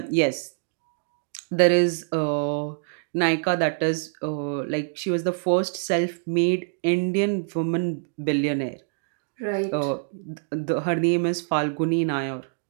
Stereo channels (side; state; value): left; silent; digital silence